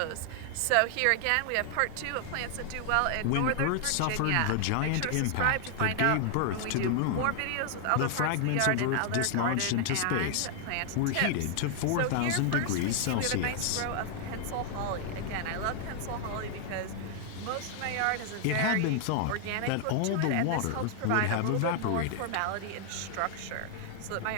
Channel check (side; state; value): both; different; correlation 0.00